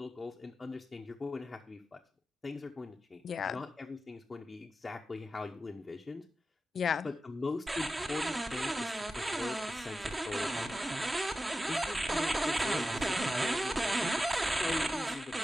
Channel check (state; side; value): normal; both; correlation 0.92